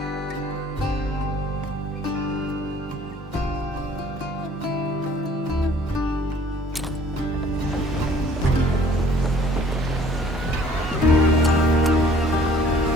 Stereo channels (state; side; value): normal; both; correlation 0.55